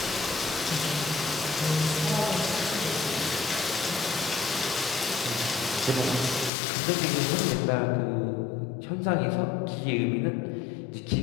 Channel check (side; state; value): right; drops out; at 6.5 s